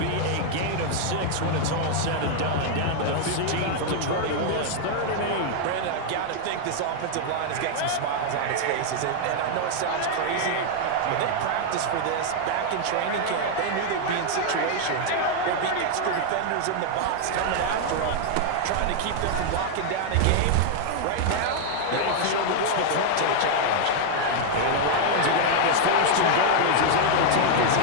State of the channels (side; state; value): both; different; correlation 0.00